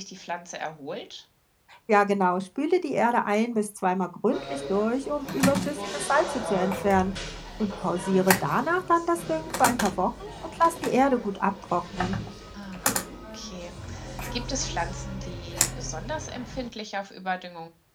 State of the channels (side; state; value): both; identical; correlation 1.00